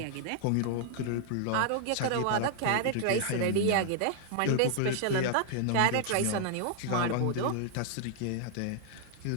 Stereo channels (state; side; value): different; both; correlation 0.00